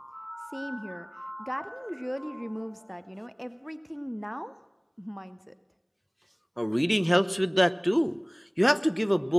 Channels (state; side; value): identical; both; correlation 1.00